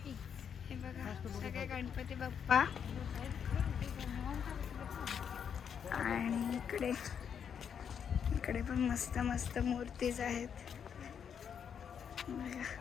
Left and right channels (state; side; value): quieter; right; 7.6 dB